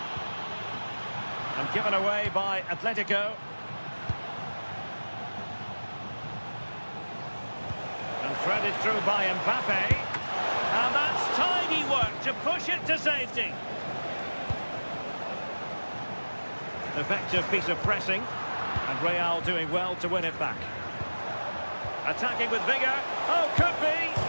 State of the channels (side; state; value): both; inverted; correlation -1.00